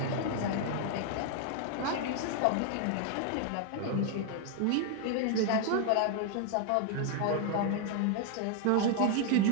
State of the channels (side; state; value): both; different; correlation 0.00